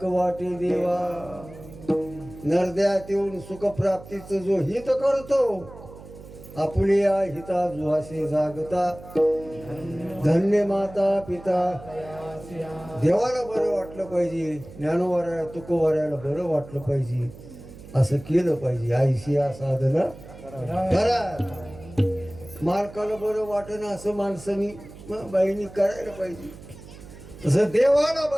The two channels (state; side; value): noise; right; hum, 17 dB below the sound